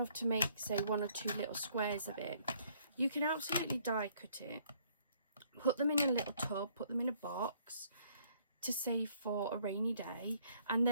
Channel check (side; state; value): both; inverted; correlation -0.64